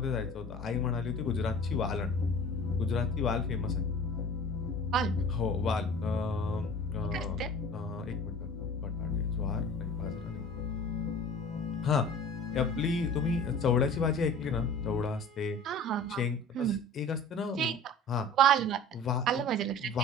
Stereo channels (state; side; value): normal; both; correlation 0.42